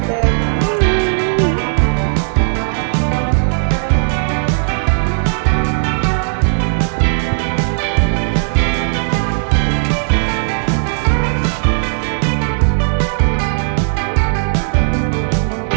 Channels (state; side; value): silent; left; digital silence